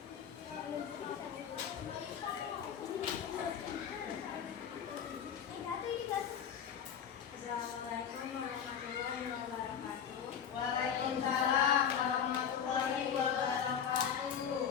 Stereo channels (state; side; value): quieter; right; 8.1 dB